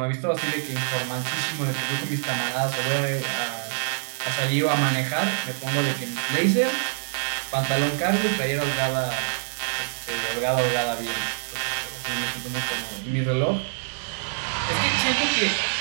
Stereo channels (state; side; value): silent; left; digital silence